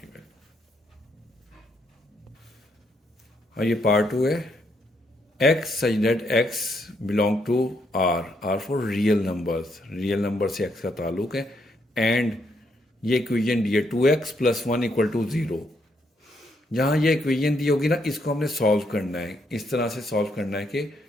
और ये पार्ट 2 है, x such that x belong to r for real number से x का ताल्लुक है, एंड ये इक्वेशन दी है 2x + 1 = 0। जहाँ ये इक्वेशन दी होगी ना इसको हमने सॉल्व करना है। इस तरह से सॉल्व करना है कि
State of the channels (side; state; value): both; normal; correlation 0.75